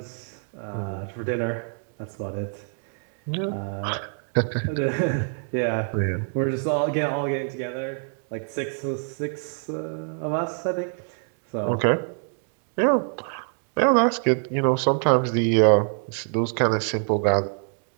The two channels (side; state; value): left; silent; 61 dB below the other